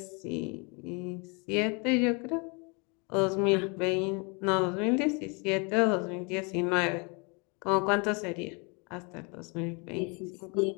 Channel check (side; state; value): right; quieter; 32.1 dB